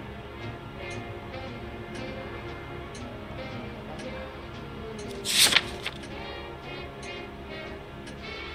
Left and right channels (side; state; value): both; identical; correlation 1.00